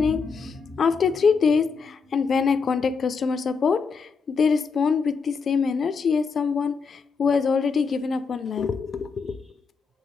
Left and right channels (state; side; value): quieter; right; 5.2 dB